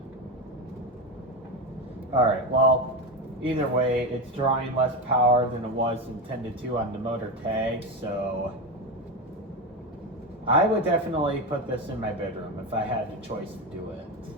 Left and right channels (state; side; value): normal; both; correlation 0.17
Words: Alright, well, either way, it's drawing less power than it was intended to on the motor tag, so I would definitely put this in my bedroom if I had the choice to do it.